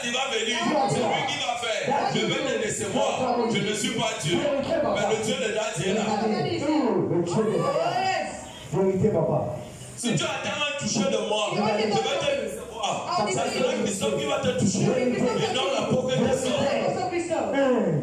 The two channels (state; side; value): identical; both; correlation 1.00